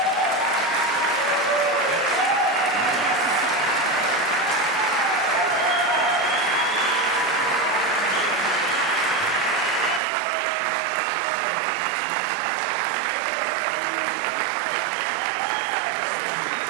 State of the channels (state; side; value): drops out; left; at 10.0 s